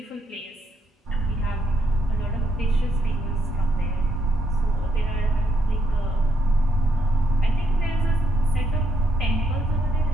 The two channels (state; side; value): normal; both; correlation 0.75